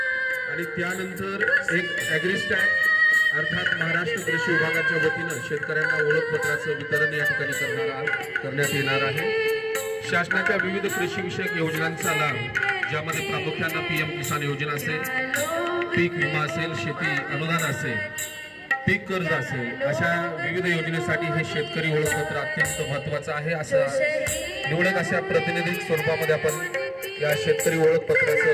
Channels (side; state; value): both; identical; correlation 1.00